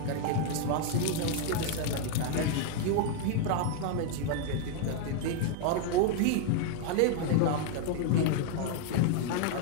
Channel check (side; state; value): both; different; correlation 0.00